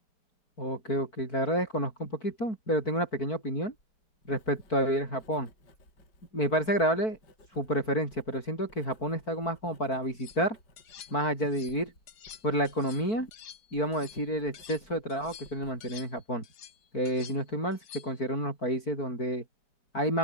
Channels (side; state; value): right; late; 4.5 ms